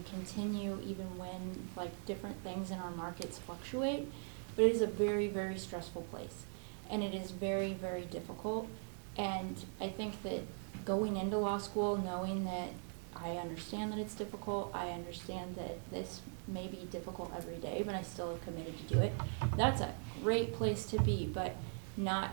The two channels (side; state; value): left; silent; 51 dB below the other